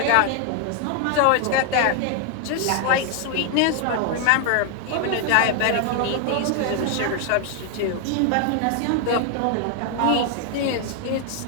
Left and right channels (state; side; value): different; both; correlation 0.00